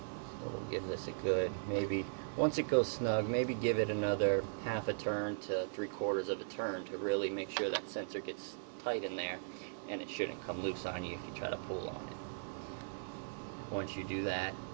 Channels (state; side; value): silent; left; 52 dB below the other